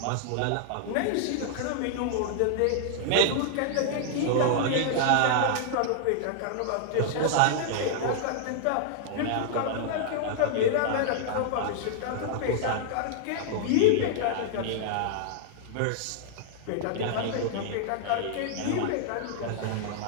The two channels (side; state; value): both; different; correlation -0.01